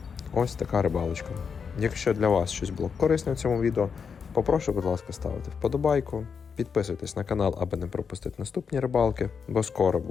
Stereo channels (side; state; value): right; quieter; 6.2 dB